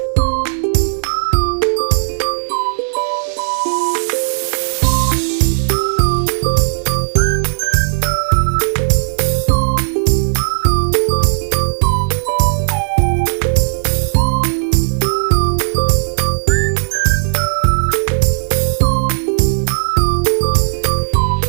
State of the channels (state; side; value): silent; left; digital silence